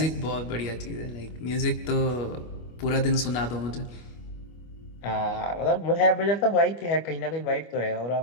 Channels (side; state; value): right; late; 25 ms